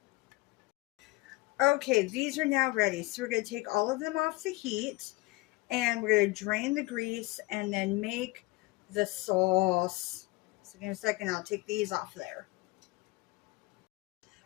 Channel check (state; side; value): quieter; right; 22.7 dB